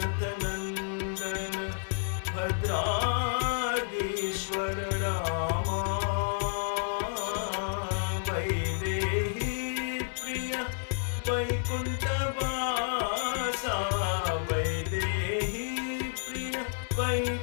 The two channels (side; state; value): right; silent; 58 dB below the other